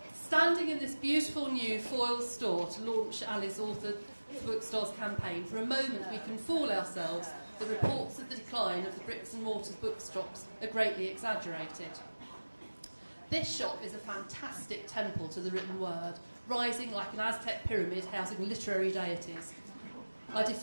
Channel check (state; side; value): inverted; both; correlation -1.00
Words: Standing in this beautiful new foil store to launch Ali's Authors4Bookstores campaign, for a moment we can fool ourselves that reports of the decline of the bricks and mortar bookshops are greatly exaggerated. This shop is a fantastic temple to the written word, rising like an Aztec pyramid housing literary deities. I